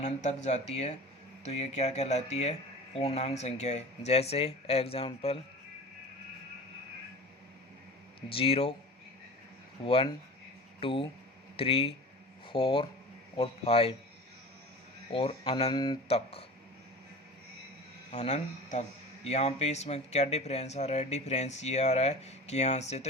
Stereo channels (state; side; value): normal; both; correlation 0.36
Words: तक जाती है, तो ये क्या कहलाती है? पूर्णांक संख्या है। जैसे एग्जाम्पल 0 1 2 3 4 और 5 और अनंत तक। अनंत तक। यहाँ पे इसमें क्या डिफरेंस आ रहा है? डिफरेंस ये आ रहा है कि यहाँ से तो